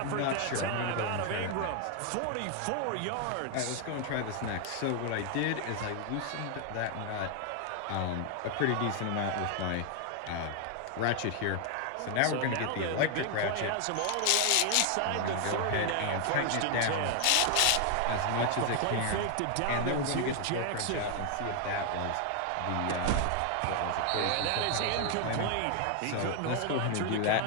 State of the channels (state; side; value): different; both; correlation 0.00